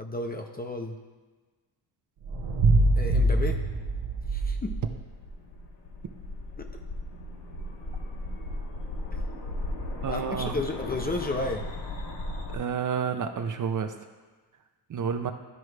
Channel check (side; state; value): both; normal; correlation 0.56